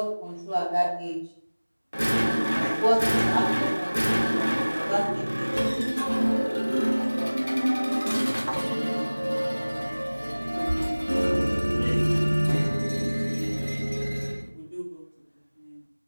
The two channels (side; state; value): both; inverted; correlation -1.00